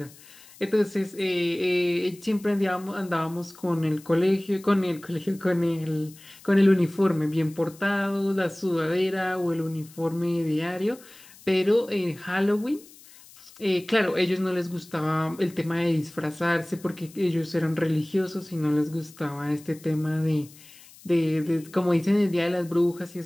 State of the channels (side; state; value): left; noise; hiss, 22 dB below the sound